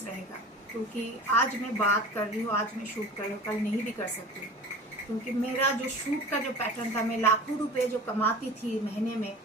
रहेगा, क्योंकि आज मैं बात कर रही हूँ, आज मैं शूट कर रही हूँ, कल नहीं भी कर सकती, क्योंकि मेरा जो शूट का जो पैटर्न था, मैं लाखों रुपए जो कमाती थी महीने में,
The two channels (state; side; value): normal; both; correlation 0.37